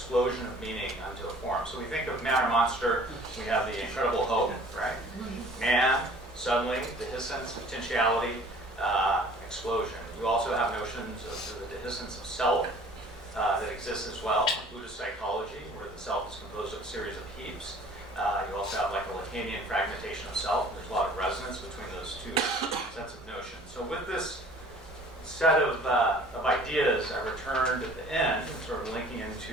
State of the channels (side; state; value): both; normal; correlation 0.50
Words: of meaning onto a form. So we think of man or monster, we have the incredible hope, right? Man, suddenly, dehiscence, potentiality, explosion. You also have notions of the dehiscence of self that exists as well in Buddhist psychology, where the self is composed of a series of heaps. You also have like a Lacanian fragmentation of self. There's a lot of resonance between those two sets of notions. So with this set of ideas, I returned at the end, sort of linking